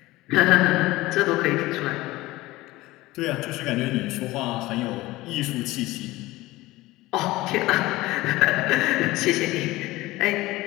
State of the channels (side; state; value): right; quieter; 18.8 dB